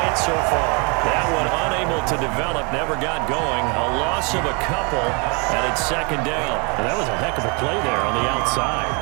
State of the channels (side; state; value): left; quieter; 32.5 dB